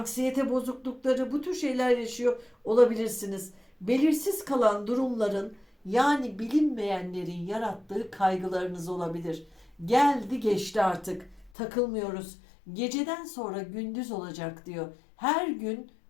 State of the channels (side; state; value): right; drops out; at 11.5 s